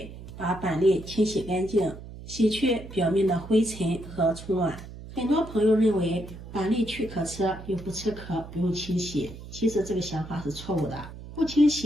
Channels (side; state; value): right; noise; hum, 14 dB below the sound